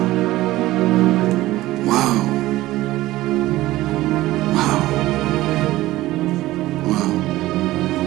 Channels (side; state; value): left; quieter; 16.9 dB